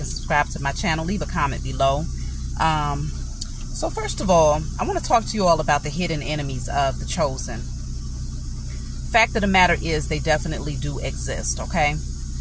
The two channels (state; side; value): identical; both; correlation 1.00